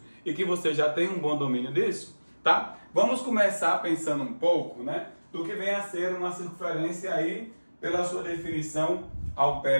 e que você já tem um bom domínio disso, tá? Vamos começar pensando um pouco, né, do que vem a ser uma circunferência aí pela sua definição ao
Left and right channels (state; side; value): inverted; both; correlation -1.00